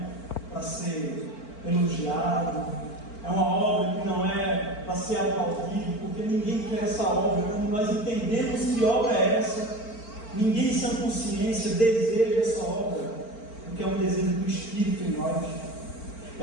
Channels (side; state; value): right; late; 4.4 ms